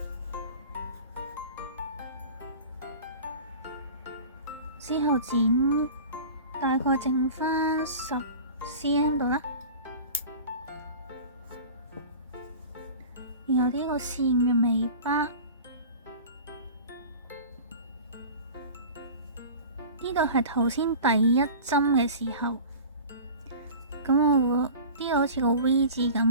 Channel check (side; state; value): both; inverted; correlation -0.38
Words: 之後剪大概剩返10cm 度啦，然後呢個線嘅尾巴呢度係頭先第一針嘅時候。咁我會呢度好似個 V 字咁